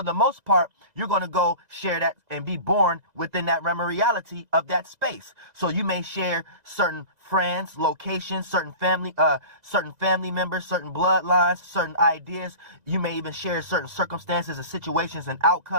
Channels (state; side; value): late; left; 2.0 ms